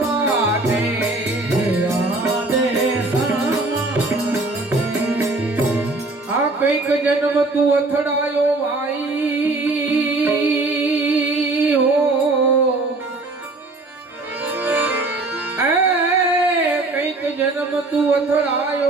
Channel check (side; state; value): left; quieter; 3.1 dB